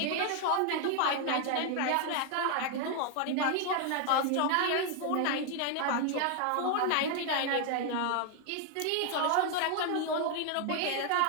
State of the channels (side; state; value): both; different; correlation 0.00